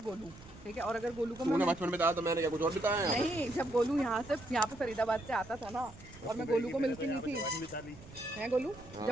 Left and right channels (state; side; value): noise; right; rumble, 19 dB below the sound